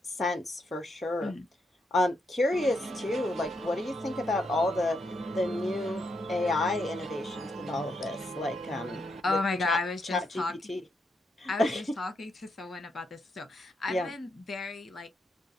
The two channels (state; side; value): normal; both; correlation 0.80